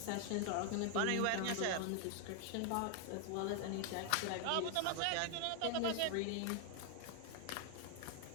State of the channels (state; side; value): different; both; correlation 0.00